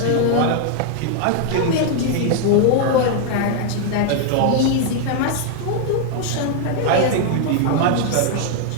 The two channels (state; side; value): different; both; correlation 0.00